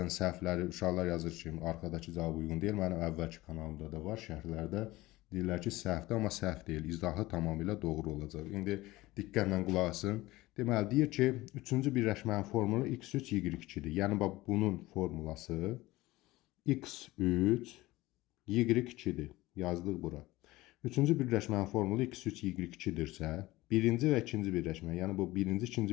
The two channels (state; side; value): quieter; right; 18.9 dB